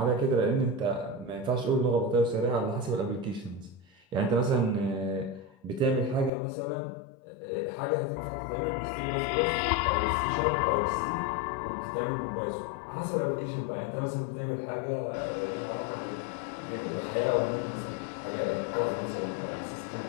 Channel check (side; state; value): right; drops out; at 6.3 s